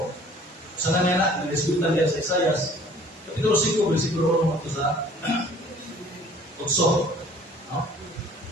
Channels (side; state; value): both; normal; correlation 0.53